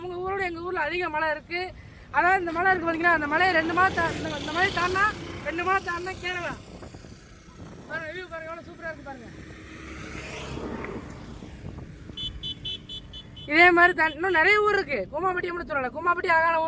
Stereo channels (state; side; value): identical; both; correlation 1.00